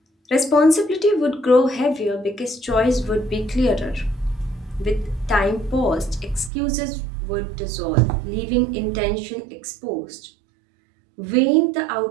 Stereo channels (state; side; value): drops out; left; at 6.5 s